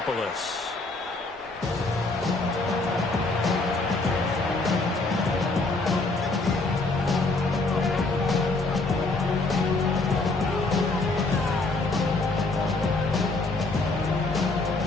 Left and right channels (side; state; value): right; quieter; 3.3 dB